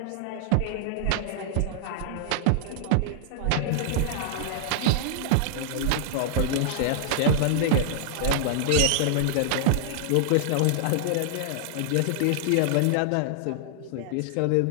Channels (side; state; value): both; different; correlation -0.01